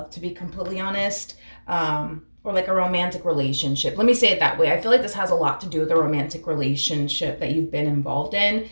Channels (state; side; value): inverted; both; correlation -1.00